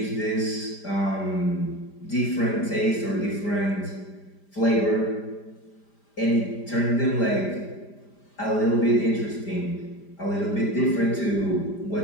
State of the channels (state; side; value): late; right; 5.0 ms